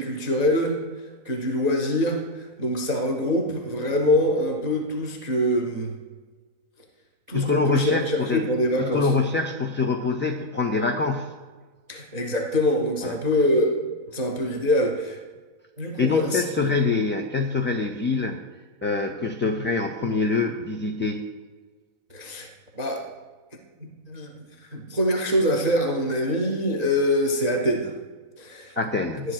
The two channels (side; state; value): left; late; 4.0 ms